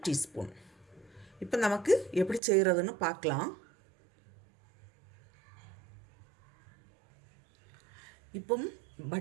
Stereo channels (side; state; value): left; drops out; at 2.4 s